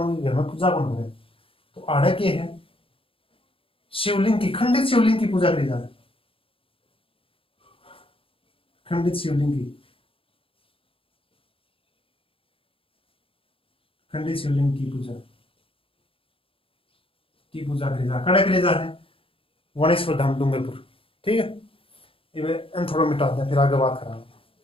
घर में पूजा कौन करे? तो आड़े के है शिवलिंग की, खंडित शिवलिंग की पूजा करी जाए, खंडित शिवलिंग की, खंडित शिवलिंग की पूजा करी जा, कड़े करी जा है वनेश्वर धाम डूंगरपुर। ठीक है, ये थोड़ा मिटा दें, फिर आगे बात करा।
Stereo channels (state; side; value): late; right; 0.26 ms